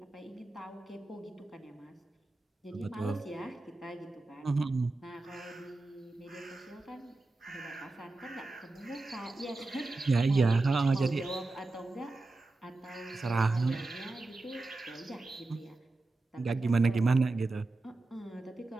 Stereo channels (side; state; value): left; quieter; 3.2 dB